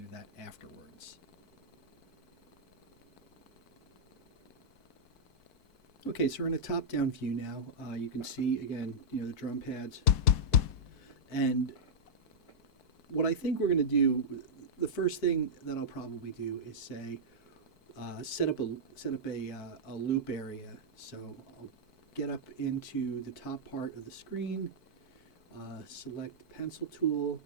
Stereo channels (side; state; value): right; late; 4.6 ms